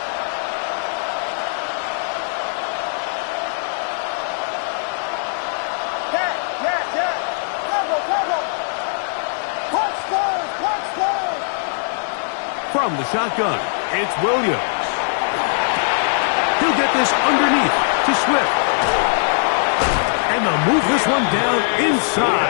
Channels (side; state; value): right; silent; digital silence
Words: From the shotgun, it's Williams. He'll get this underneath to Swift. And they'll move this one down